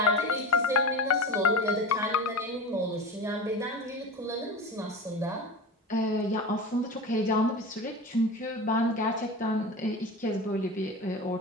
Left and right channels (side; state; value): both; normal; correlation 0.31